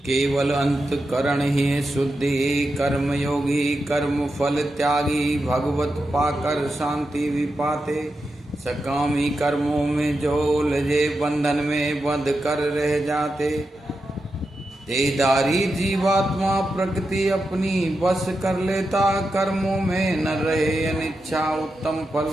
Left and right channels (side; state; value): both; normal; correlation 0.89